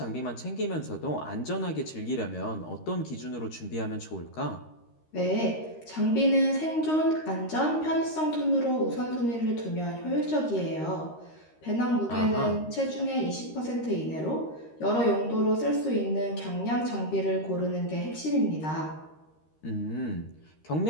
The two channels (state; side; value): late; right; 13 ms